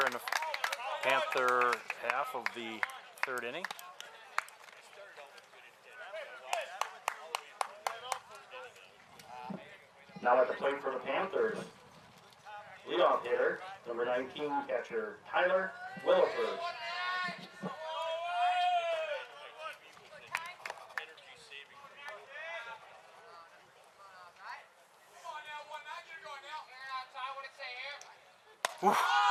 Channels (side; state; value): both; identical; correlation 1.00